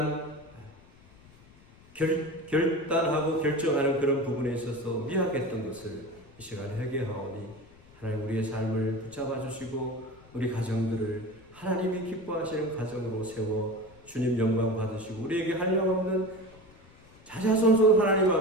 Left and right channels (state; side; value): noise; left; rumble, 25 dB below the sound